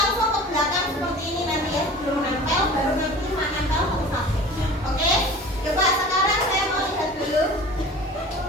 ke belakang seperti ini nanti ya, sebelum nempel, baru nanti menempel satu-satu. Oke? Coba sekarang saya mau lihat dulu.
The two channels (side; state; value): both; normal; correlation 0.40